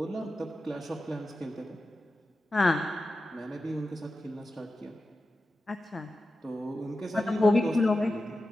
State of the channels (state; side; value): normal; both; correlation 0.92